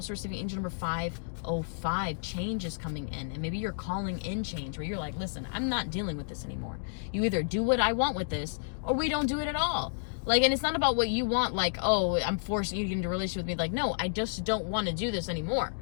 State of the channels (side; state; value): right; silent; digital silence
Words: receiving angel number 505, change is coming in. And maybe you're calling in change, where you're like, listen, I'm not dealing with this anymore. You either do what I want with this, or we don't do it at all. Like, and it's not about what you want, like, oh, I'm forcing you to get into a relationship with me. Like, no, I just don't want to do this anymore